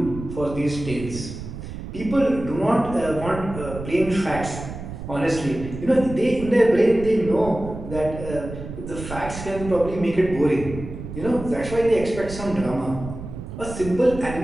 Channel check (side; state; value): right; noise; rumble, 10 dB below the sound